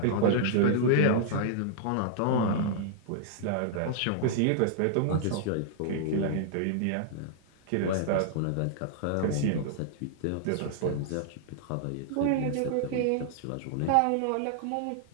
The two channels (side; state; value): both; different; correlation -0.01